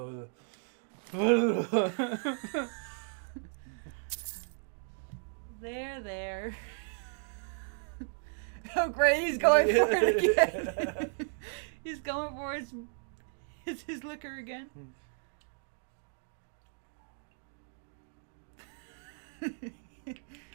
There. Oh great, he's going for it again. He's going for his liquor again.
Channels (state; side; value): silent; left; digital silence